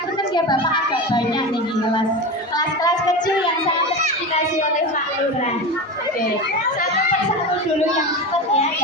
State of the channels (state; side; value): normal; both; correlation 0.24